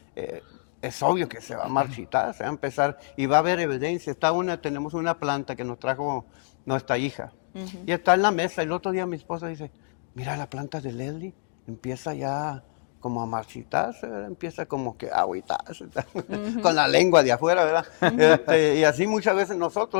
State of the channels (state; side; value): silent; right; digital silence